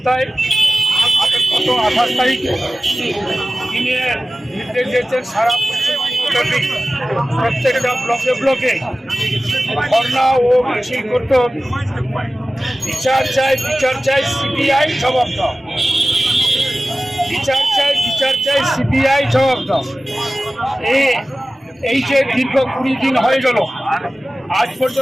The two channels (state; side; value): normal; both; correlation 0.96